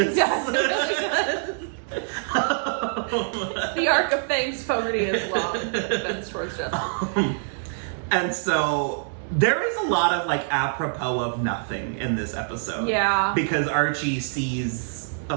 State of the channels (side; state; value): left; silent; digital silence